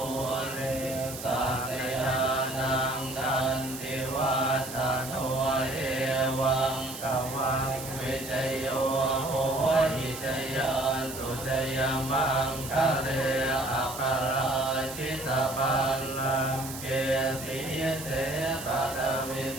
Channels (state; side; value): noise; right; hiss, 10 dB below the sound